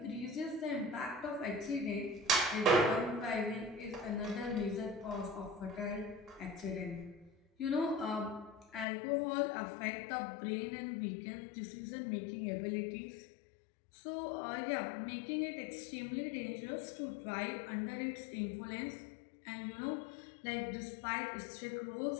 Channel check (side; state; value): right; drops out; at 8.8 s